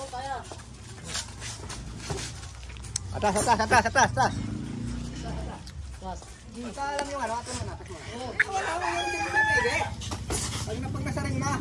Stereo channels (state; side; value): identical; both; correlation 1.00